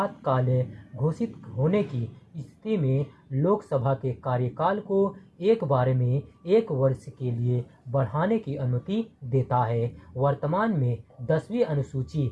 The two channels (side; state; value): both; identical; correlation 1.00